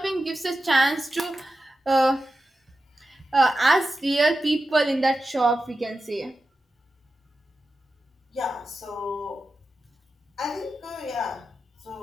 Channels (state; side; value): normal; both; correlation 0.91